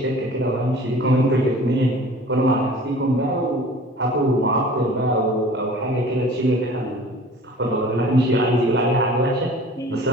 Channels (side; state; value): both; normal; correlation 0.45